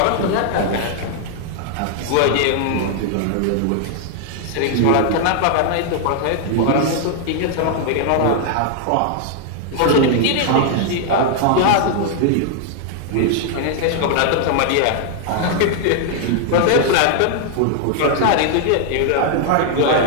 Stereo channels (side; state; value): both; different; correlation 0.00